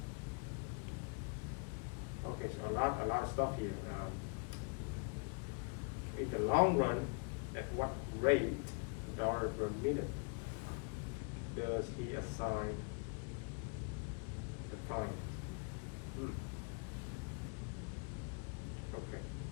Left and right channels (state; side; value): quieter; right; 34.7 dB